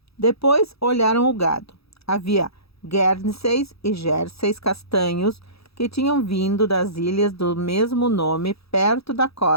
Depois olharam o gado. Havia Guernseys e Jerseys castanhos que tinham vindo das ilhas do mesmo nome perto da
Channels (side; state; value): right; late; 0.77 ms